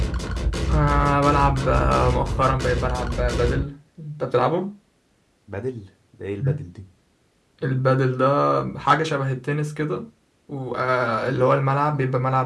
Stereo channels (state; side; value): identical; both; correlation 1.00